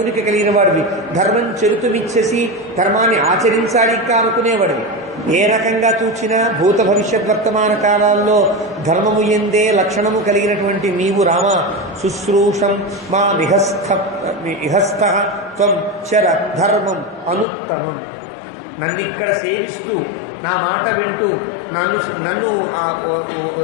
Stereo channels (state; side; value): drops out; right; at 17.4 s